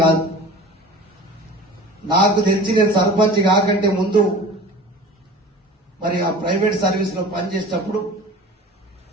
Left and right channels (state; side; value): normal; both; correlation 0.40